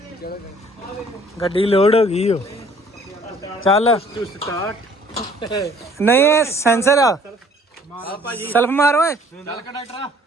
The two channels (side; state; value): both; normal; correlation 0.57